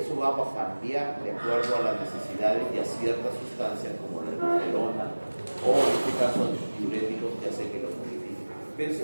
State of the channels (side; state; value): both; inverted; correlation -1.00